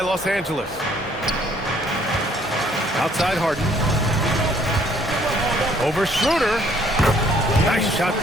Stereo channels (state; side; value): normal; both; correlation 0.62